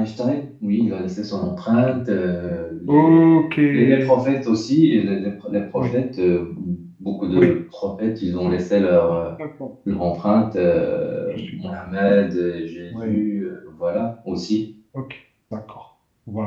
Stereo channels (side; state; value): both; identical; correlation 1.00